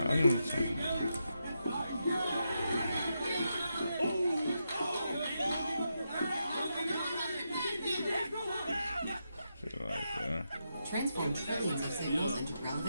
Transform trillions of signals into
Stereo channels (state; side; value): inverted; both; correlation -0.85